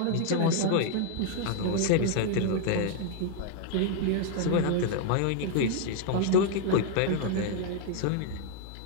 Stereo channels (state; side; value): different; both; correlation 0.00